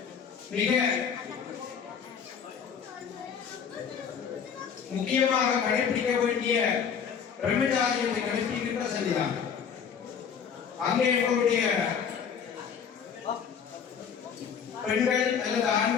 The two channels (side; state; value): right; quieter; 7.2 dB